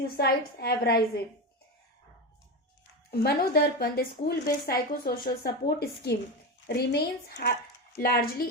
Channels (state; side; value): normal; both; correlation 0.18